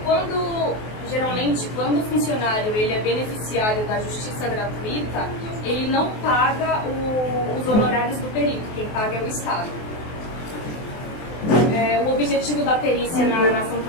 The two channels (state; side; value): late; right; 23 ms